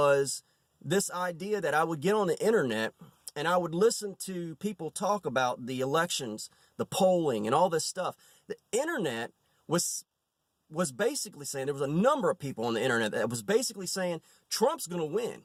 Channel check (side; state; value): both; identical; correlation 1.00